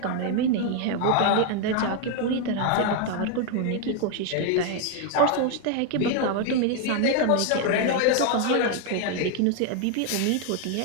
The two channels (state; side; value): different; both; correlation 0.00